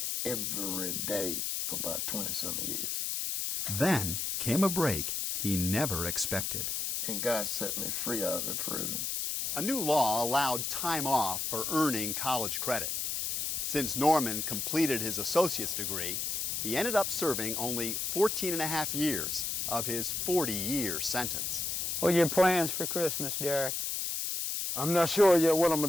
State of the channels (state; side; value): noise; left; hiss, 1 dB below the sound